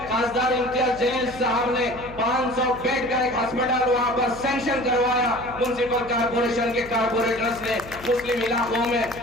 खासदार इम्तियाज जलील साहब ने 500 बेड का एक अस्पताल वहां पर सैंक्शन करवाया। म्युनिसिपल कारपोरेशन के कारपोरेटर्स ने मुस्लिम इलाकों में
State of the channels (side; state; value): left; noise; hum, 17 dB below the sound